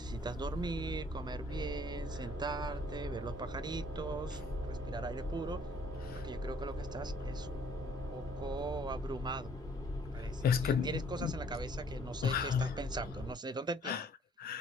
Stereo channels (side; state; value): both; normal; correlation 0.60